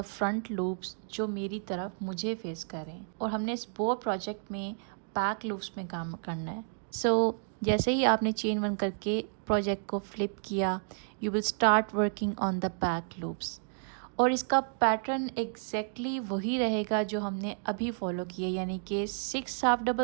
front loops जो मेरी तरफ मुझे फेस कर रहे हैं. और हमने इस बो प्रोजेक्ट में बैक लूप्स में काम करना है. सो जैसे ही आपने चेन 1 करके प्रोजेक्ट को फ्लिप किया, you will start working on the back loops. और इसका पैटर्न एग्जैक्टली वही रहेगा जो हमने अभी फॉलो किया, यानी कि 6 half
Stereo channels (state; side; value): silent; left; digital silence